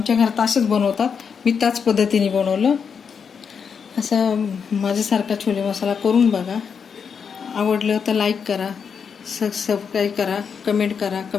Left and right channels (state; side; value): quieter; right; 6.5 dB